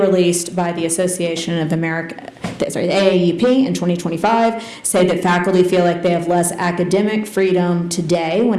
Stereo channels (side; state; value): both; identical; correlation 1.00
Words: by the Association of America, the AAUP in 2025 said that faculty feel like they have less academic freedom today